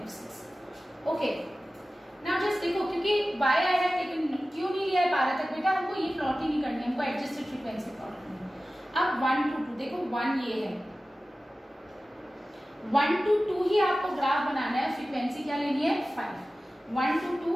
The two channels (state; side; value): normal; both; correlation 0.96